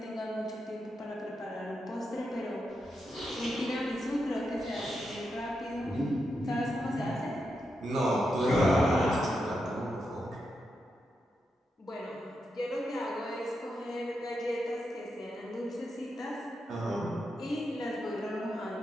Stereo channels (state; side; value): normal; both; correlation 0.85